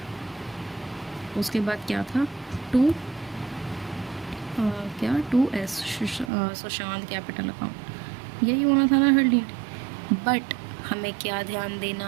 उसके बाद क्या था, 2S सुशांत कैपिटल अकाउंट, यही होना था ना हरलीन। बट हमें क्या ध्यान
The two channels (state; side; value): drops out; left; at 6.3 s